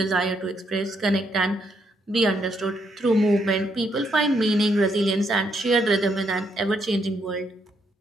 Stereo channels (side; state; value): both; normal; correlation 0.75